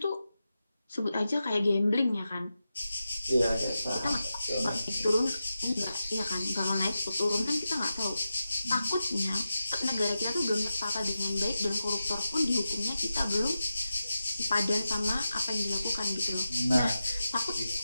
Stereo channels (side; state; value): both; inverted; correlation -0.92